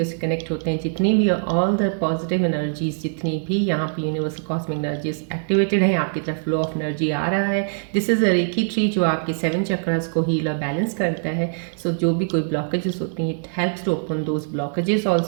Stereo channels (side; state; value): left; silent; digital silence